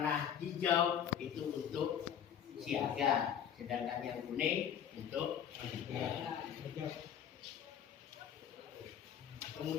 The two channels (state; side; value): quieter; right; 8.9 dB